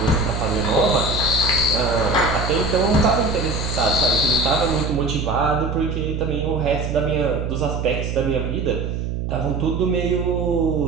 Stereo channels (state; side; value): noise; right; hum, 3 dB below the sound